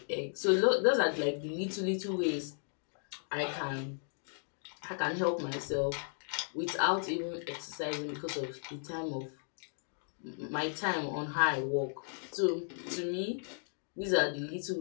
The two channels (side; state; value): right; silent; 54 dB below the other